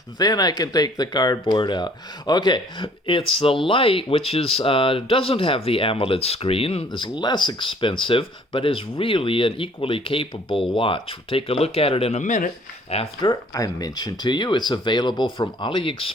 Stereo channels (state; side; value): normal; both; correlation 0.57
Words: Then I can take the cardboard out. Okay, it's the Lite, which is doesn't have the AMOLED screen, is less expensive, but is really an equally capable watch. We'll take a look at it in a minute after I mention to you it's available from